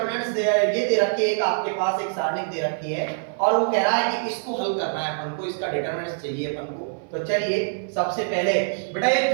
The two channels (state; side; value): silent; left; 57 dB below the other